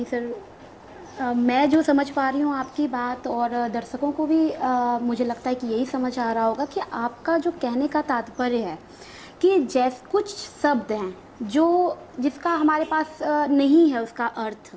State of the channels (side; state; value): both; identical; correlation 1.00